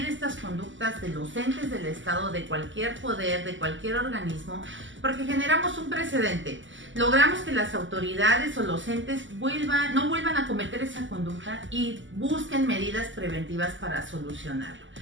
estas conductas de los entes del Estado, de cualquier poder, de cualquier organismo, porque generamos un precedente. Logramos que las autoridades o los entes no vuelvan a cometer esa conducta y busquen medidas preventivas para solucionarlo.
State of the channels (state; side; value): late; left; 0.55 ms